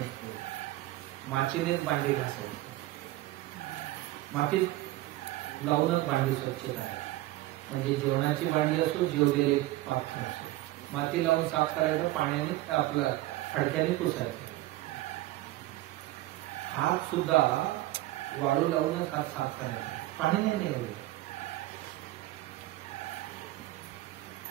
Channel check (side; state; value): left; quieter; 17.2 dB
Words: मातीनेच भांडी घासायची, मातीत लावूनच भांडी स्वच्छता आहे. म्हणजे जेवणाची भांडी असो, जेवलेले पात्र असो, माती लावून साफ करायचं, पाण्याने आपलं फडक्याने पुसायचं. हात सुद्धा वाळू लावूनच हात साफ करायचा, पाण्याने नाही होईल.